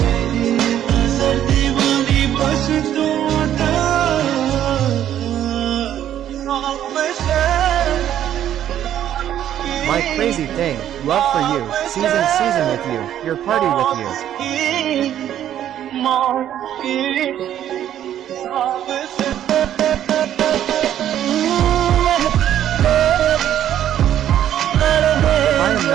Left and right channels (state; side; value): quieter; left; 11.0 dB